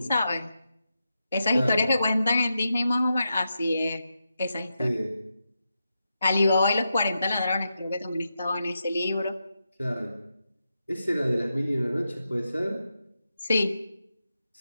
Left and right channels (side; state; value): both; inverted; correlation -0.87